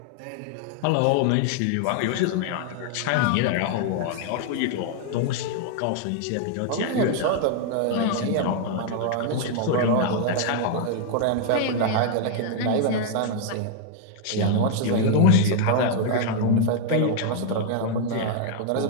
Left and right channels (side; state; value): both; different; correlation 0.00